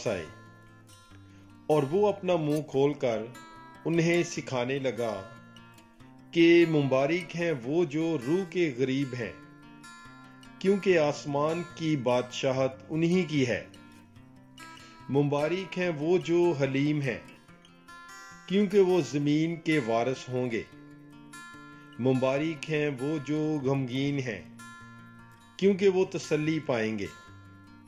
آئے، اور وہ اپنا منہ کھول کر انہیں سکھانے لگا کہ مبارک ہیں وہ جو روح کے غریب ہیں، کیونکہ آسمان کی بادشاہت انہی کی ہے۔ مبارک ہیں وہ جو حلیم ہیں، کیونکہ وہ زمین کے وارث ہوں گے۔ مبارک ہیں وہ جو غمگین ہیں، کیونکہ وہ تسلی پائیں گے۔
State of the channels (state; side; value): identical; both; correlation 1.00